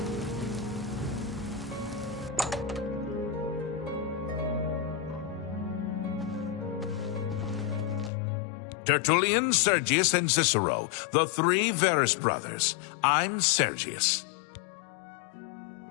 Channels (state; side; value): drops out; right; at 8.1 s